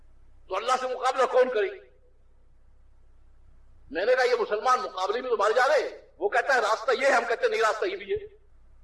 تو اللہ سے مقابلہ کون کرے؟ میں نے کہا یہ مسلمان مقابلے میں تو مارے جا رہے. وہ کہتا ہے راستہ یہ ہے، ہم کہتے ہیں نہیں راستہ یہ بھی ہے.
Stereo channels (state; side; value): identical; both; correlation 1.00